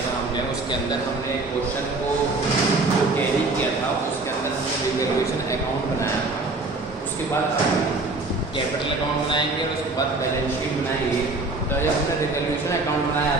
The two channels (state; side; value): quieter; left; 3.3 dB